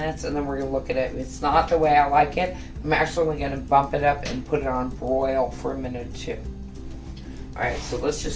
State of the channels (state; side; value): identical; both; correlation 1.00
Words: and then we're going to look at it. If it's not the way I like it, I'm actually going to bump it up and put it on broil for a minute or two. Alright, so let's